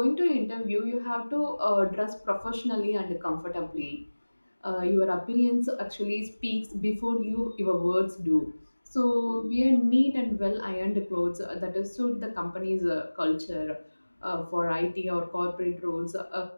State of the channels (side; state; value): both; inverted; correlation -1.00